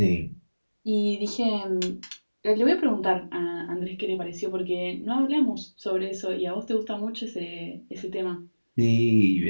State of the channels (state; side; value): inverted; both; correlation -1.00